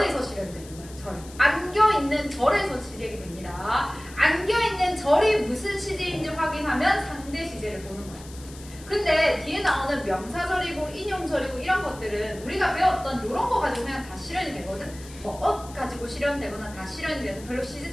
실현되는 거야. 절. 안겨 있는 절에서 시제가 됩니다. 안겨 있는 절이 무슨 시제인지 확인하면 상대 시제를 보는 거야. 근데 뒤에 나오는 명사절이고 인용절이고 이런 것들은 우리가 배웠던 이런 거 가지고 그냥 다 실현이 되거든. 뭐 가지고 실현되거나 다 실현이 돼서 별로 시제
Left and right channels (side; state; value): left; noise; hiss, 19 dB below the sound